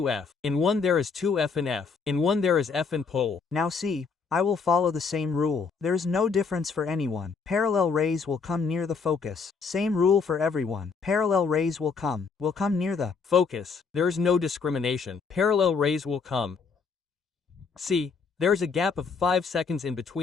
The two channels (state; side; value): quieter; right; 5.2 dB